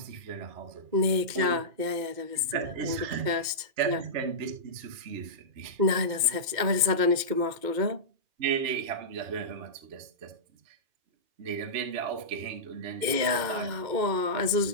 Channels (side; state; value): left; late; 2.1 ms